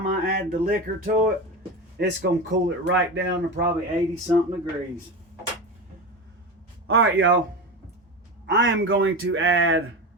I add the liquor to it, it's going to cool it right down to probably 80 something degrees. All right, y'all. I am going to add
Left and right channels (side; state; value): both; normal; correlation 0.23